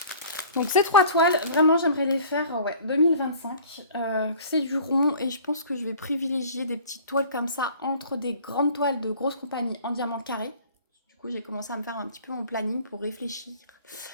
Donc, ces 3 toiles, vraiment, j'aimerais les faire 2025. C'est du rond et je pense que je vais privilégier des petites toiles comme ça entre des grandes toiles de grosses compagnies en diamant carré. Du coup, j'ai commencé à me faire un petit peu mon planning pour réfléchir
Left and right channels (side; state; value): both; inverted; correlation -0.47